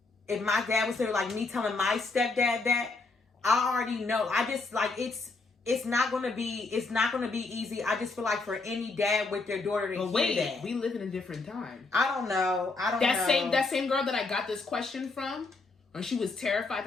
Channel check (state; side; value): quieter; right; 3.7 dB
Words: if my dad was there, like me telling my stepdad that, I already know. I just like it's not gonna be easy. I just feel like for any dad with their daughter to hear that. We live in a different time. I don't know. That same girl that I got this question from, and she was terrified